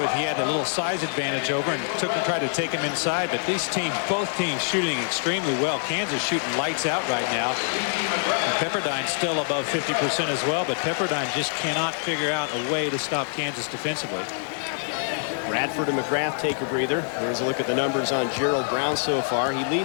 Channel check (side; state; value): right; silent; 62 dB below the other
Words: he had a little size advantage over and tried to take him inside. But these teams, both teams shooting extremely well. Kansas shooting lights out right now. And Pepperdine's still above 50% as well, but Pepperdine just cannot figure out a way to stop Kansas defensively. Bradford and McGrath take a breather. Here's a look at the numbers on Gerald Brown so far. He